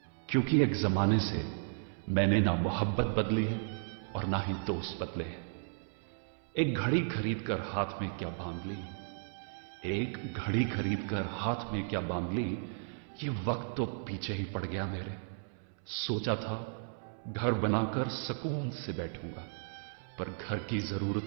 क्योंकि एक जमाने से मैंने ना मोहब्बत बदली है और ना ही दोस्त बदले हैं। एक घड़ी खरीद कर हाथ में क्या बांध ली, एक घड़ी खरीद कर हाथ में क्या बांध ली, ये वक्त तो पीछे ही पड़ गया मेरे। सोचा था घर बनाकर सुकून से बैठूंगा, पर घर की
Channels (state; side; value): silent; left; 55 dB below the other